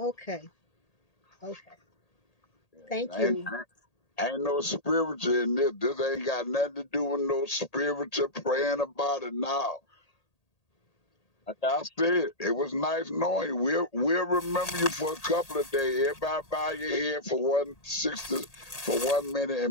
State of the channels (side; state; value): right; late; 1.8 ms